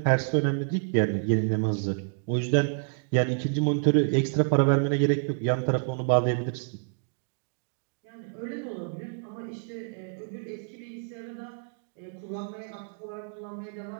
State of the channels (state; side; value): silent; left; digital silence